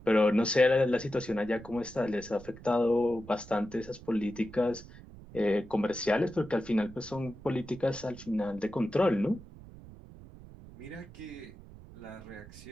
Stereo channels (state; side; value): noise; right; rumble, 18 dB below the sound